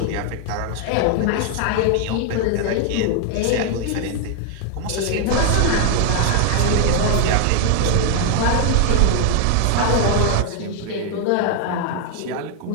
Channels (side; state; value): both; different; correlation 0.00